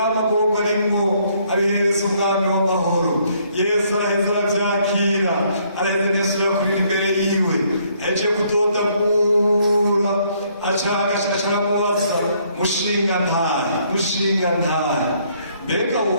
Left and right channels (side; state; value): both; inverted; correlation -0.67